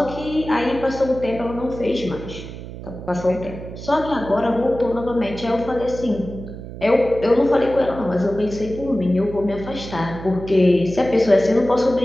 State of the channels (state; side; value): noise; right; hum, 11 dB below the sound